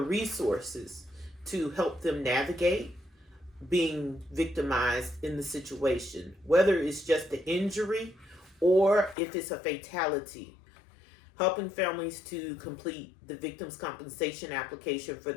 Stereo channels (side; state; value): right; drops out; at 9.2 s